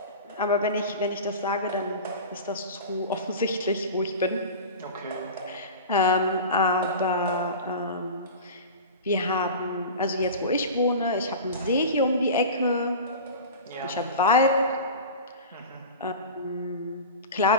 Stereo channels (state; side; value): inverted; both; correlation -0.32